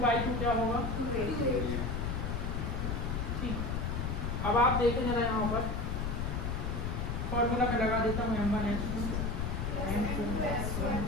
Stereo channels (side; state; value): left; noise; rumble, 1 dB below the sound